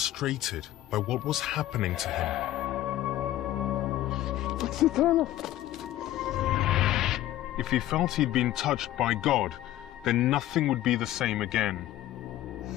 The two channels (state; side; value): quieter; right; 14.2 dB